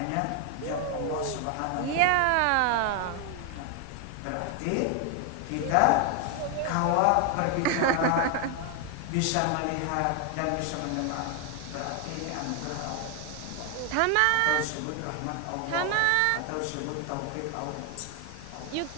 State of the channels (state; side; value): different; both; correlation 0.01